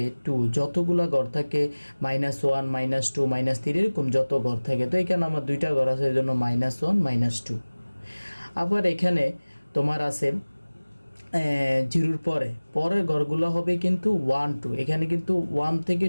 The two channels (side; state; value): both; inverted; correlation -1.00